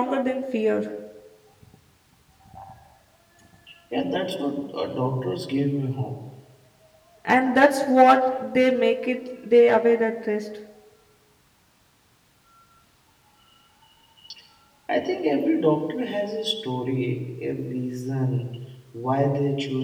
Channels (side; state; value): both; identical; correlation 1.00